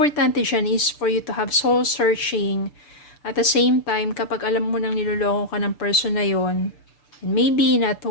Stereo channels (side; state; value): right; late; 6.8 ms